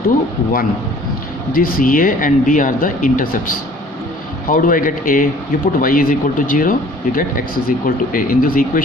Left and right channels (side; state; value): both; normal; correlation 0.52